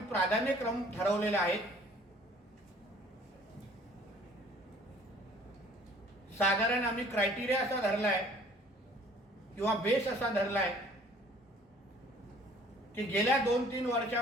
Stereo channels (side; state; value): both; normal; correlation 0.54